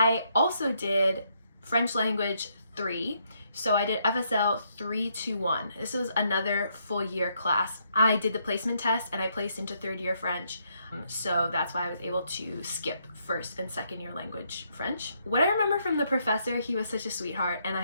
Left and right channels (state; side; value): inverted; both; correlation -0.74